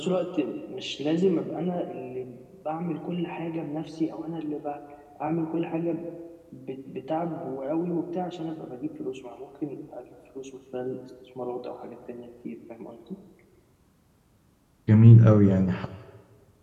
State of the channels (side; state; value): both; identical; correlation 1.00